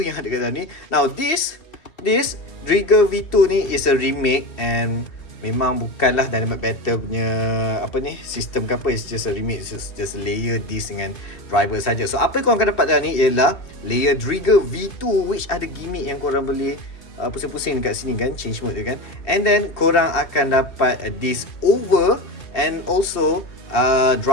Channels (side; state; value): right; late; 2.7 ms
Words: ada kat dalam ni. Now this DRIGER V2 ni is a remake, and memang bukanlah Dynamite Battle punya apa ni, sistem ke apa. It's just a remake, it's just layer disc dengan driver saja. So apa yang korang akan dapat dalam ni ialah layer DRIGER V2, which ada gimmick yang korang boleh pusing-pusing dekat sini kan, change mode dia kan. And then korang akan dapat disc over and also